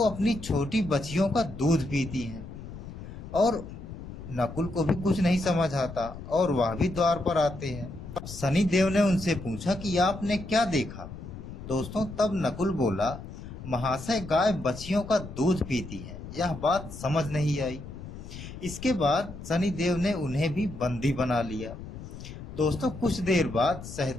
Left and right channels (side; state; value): left; noise; rumble, 12 dB below the sound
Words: अपनी छोटी बच्चियों का दूध पीती हैं। और नकुल को भी कुछ नहीं समझ आता और वह भी द्वार पर आते हैं। शनि देव ने उनसे पूछा कि आपने क्या देखा। दोस्तों, तब नकुल बोला, महाशय, गाय बच्चियों का दूध पीती हैं यह बात समझ नहीं आई। इसके बाद शनिदेव ने उन्हें भी बंदी बना लिया। दोस्तों कुछ देर बाद